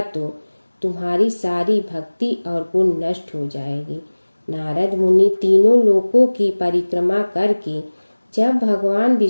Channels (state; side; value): inverted; both; correlation -1.00